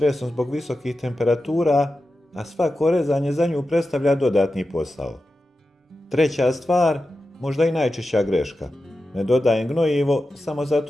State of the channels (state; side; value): normal; both; correlation 0.92